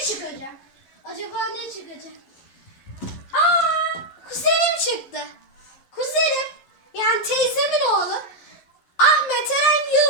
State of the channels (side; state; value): right; late; 11 ms